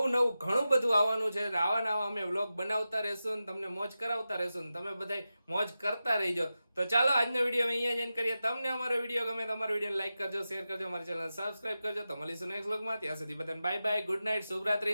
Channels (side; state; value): both; inverted; correlation -0.93